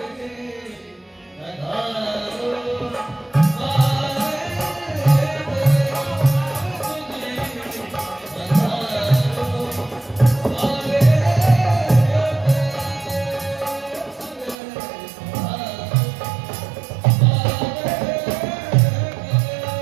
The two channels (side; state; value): left; drops out; at 14.6 s